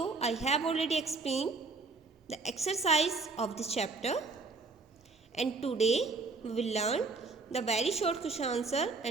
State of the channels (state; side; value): quieter; left; 3.9 dB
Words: I have already explained the exercise of this chapter, and today we will learn the very short question answer